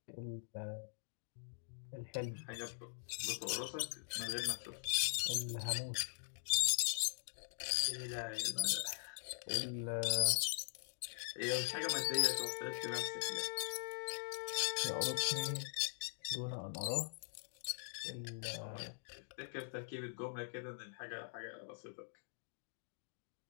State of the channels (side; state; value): right; silent; digital silence